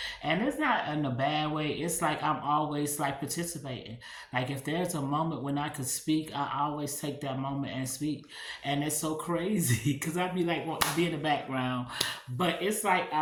and it's not in a bad way. It's like I'm always like participating. Like if there's a moment when I could speak, I always take that moment and speak. And it's so crazy because I'd be like want to be in the background, but it's like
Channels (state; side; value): identical; both; correlation 1.00